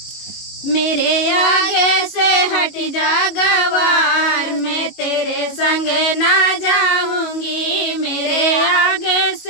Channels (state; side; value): late; right; 22 ms